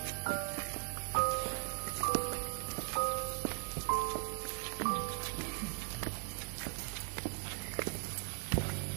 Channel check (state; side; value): silent; left; 52 dB below the other